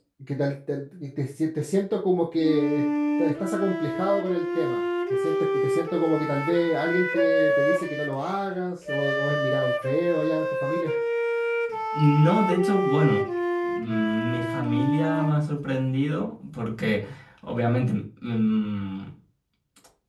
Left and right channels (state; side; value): identical; both; correlation 1.00